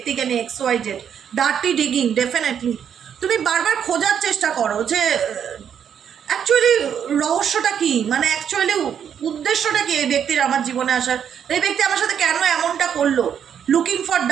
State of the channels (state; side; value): quieter; left; 8.4 dB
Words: নিয়ে, XYZ ডার্টি ডিগিং। ডেফিনেটলি তুমি বারবার খোঁজার চেষ্টা করো যে অ্যাকচুয়ালি রহস্যটা কি, মানে অ্যাকচুয়ালি উদ্দেশ্যটা কি এই ব্যক্তির আমার জীবনে আসার, এই ব্যক্তি আমার সাথে কেন এমনটা করলো। Looking for